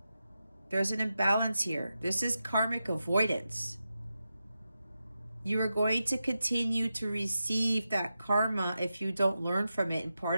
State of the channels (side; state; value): both; inverted; correlation -0.90